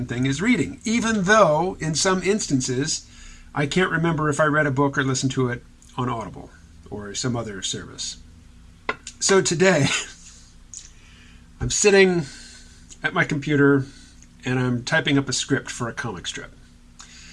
thing as reading, even though in some instances I can't remember if I read a book or listened to it on Audible or some other service. So today I'm sitting at my computer and I'm typing up a script for a comic strip.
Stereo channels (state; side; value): identical; both; correlation 1.00